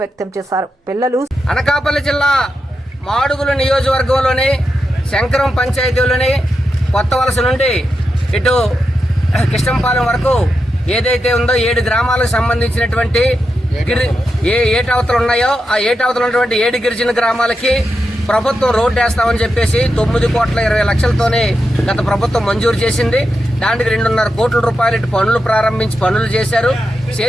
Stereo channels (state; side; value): normal; both; correlation 0.88